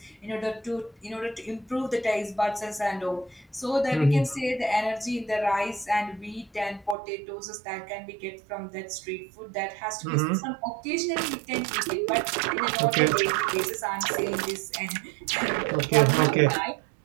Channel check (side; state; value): left; drops out; at 7.0 s